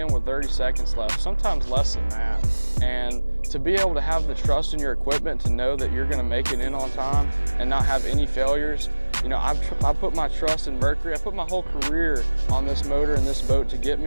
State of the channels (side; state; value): both; inverted; correlation -1.00